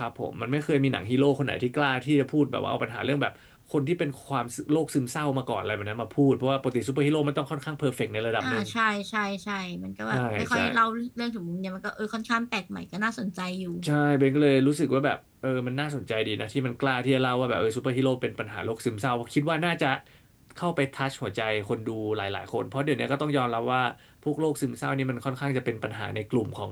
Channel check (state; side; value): identical; both; correlation 1.00